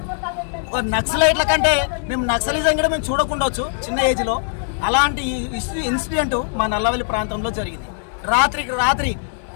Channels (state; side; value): silent; right; 65 dB below the other